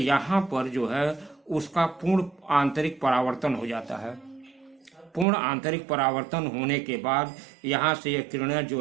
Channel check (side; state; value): left; drops out; at 5.2 s